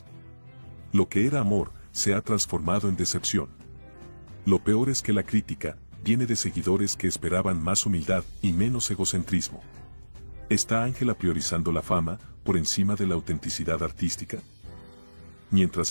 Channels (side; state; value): both; inverted; correlation -1.00